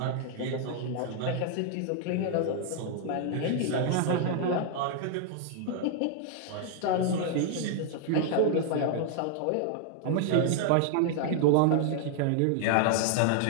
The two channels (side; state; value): both; different; correlation 0.00